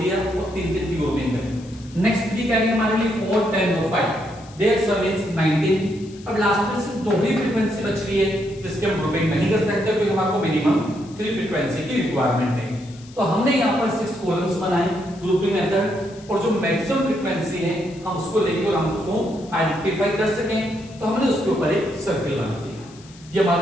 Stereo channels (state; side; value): noise; left; hiss, 23 dB below the sound